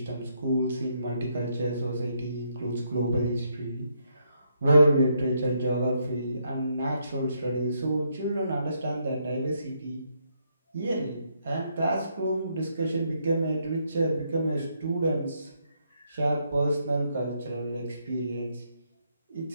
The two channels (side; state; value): both; inverted; correlation -0.76